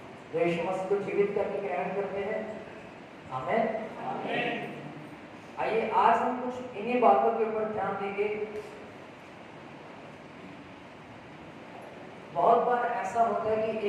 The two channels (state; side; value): identical; both; correlation 1.00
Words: जो यीशु मसीह को जीवित करके ग्रहण करते हैं? आमीन, आमीन। आइए आज हम कुछ इन्हीं बातों के ऊपर ध्यान देंगे। बहुत बार ऐसा होता है कि